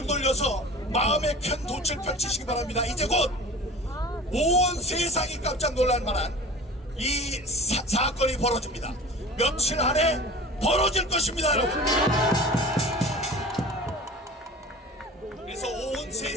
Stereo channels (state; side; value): normal; both; correlation 0.39